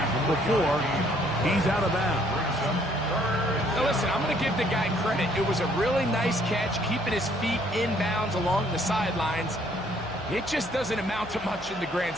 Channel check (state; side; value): noise; left; hum, 20 dB below the sound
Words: before he's out of bounds. Now listen, I'm going to give the guy credit. It was a really nice catch, keeping his feet inbounds along the sidelines. It just doesn't amount to much in the grand